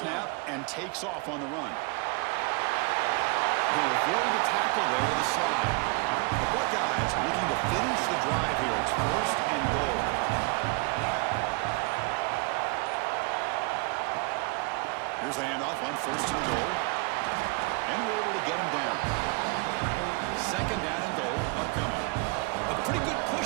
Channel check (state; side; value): quieter; left; 30.1 dB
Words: and takes off on the run. He'll avoid the tackle there with a slide. The Buckeyes looking to finish the drive here. It's 1st and goal. Here's the handoff on 1st and goal. And we're able to get him down. 2nd down and goal upcoming. A pretty good